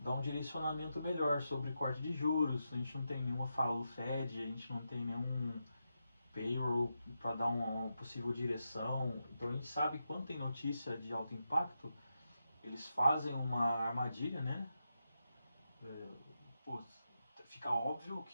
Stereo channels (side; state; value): both; inverted; correlation -0.87